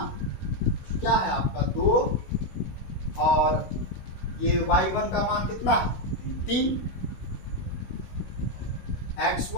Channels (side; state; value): right; late; 16 ms